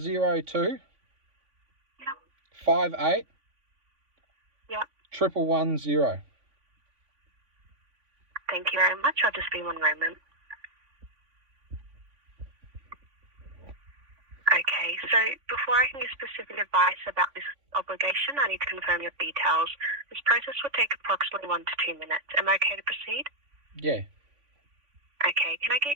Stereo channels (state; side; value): late; left; 3.5 ms